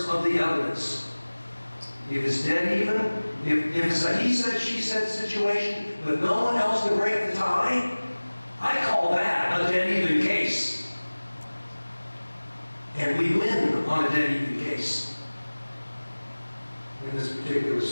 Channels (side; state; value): both; inverted; correlation -1.00